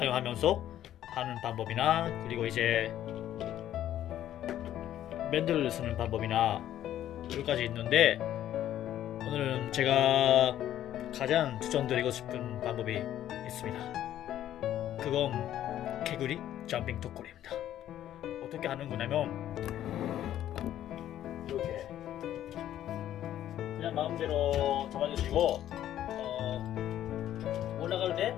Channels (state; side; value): quieter; right; 11.9 dB